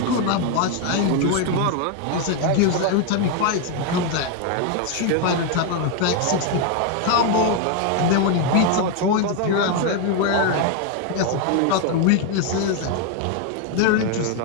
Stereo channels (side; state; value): both; different; correlation 0.01